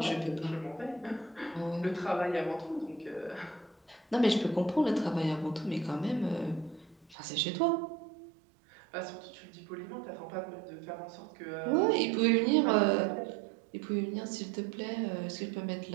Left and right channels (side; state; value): left; drops out; at 7.2 s